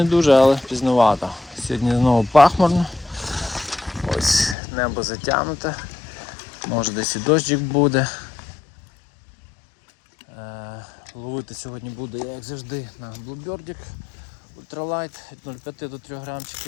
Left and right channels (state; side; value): drops out; right; at 4.5 s